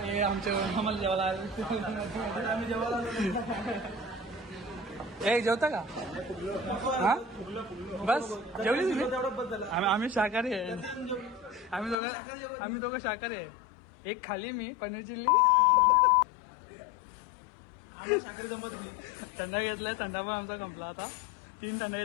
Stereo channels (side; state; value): right; drops out; at 12.0 s